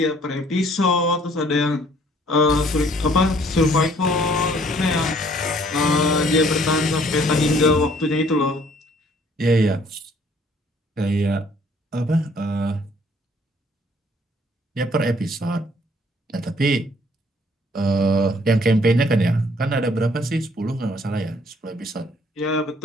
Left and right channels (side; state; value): both; normal; correlation 0.60